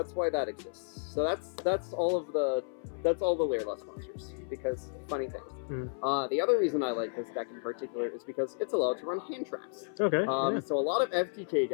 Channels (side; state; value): right; silent; 56 dB below the other